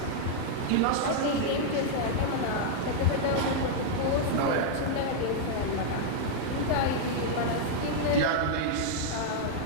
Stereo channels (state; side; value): different; both; correlation -0.01